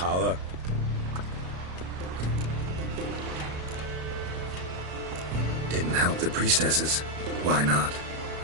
Didn't help the priestesses. Why not?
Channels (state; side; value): late; left; 33 ms